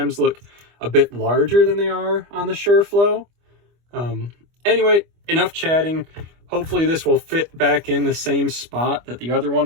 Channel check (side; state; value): left; late; 25 ms